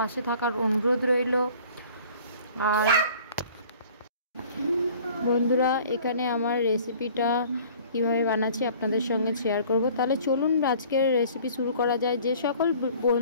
থাকার অনুরোধ রইল। আর বন্ধুরা, এখানে আমার রেসিপিটা কীভাবে বানাচ্ছি আপনাদের সঙ্গে শেয়ার করব। তাহলে চলুন আজকের রেসিপি শুরু করা যায়। যে সকল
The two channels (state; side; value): inverted; both; correlation -0.51